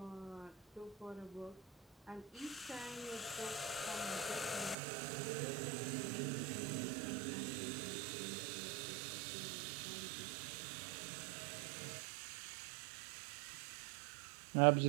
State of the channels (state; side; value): drops out; left; at 4.8 s